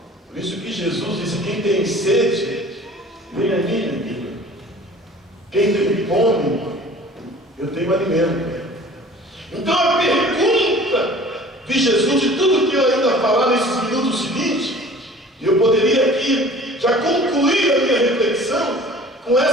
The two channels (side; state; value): both; normal; correlation 0.47